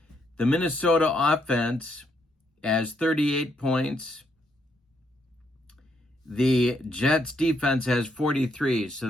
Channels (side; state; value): both; normal; correlation 0.75